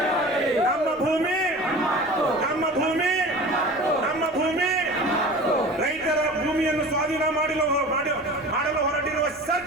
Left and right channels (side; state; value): left; noise; rumble, 26 dB below the sound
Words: ನಮ್ಮ ಭೂಮಿ ನಮ್ಮ ಭೂಮಿ ನಮ್ಮ ಭೂಮಿ. ರೈತರ ಭೂಮಿಯನ್ನು ಸ್ವಾಧೀನ ಮಾಡಲು ಹೊರಟಿರುವ